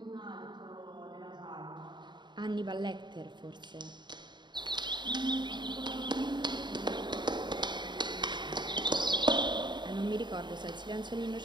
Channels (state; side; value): late; left; 0.22 ms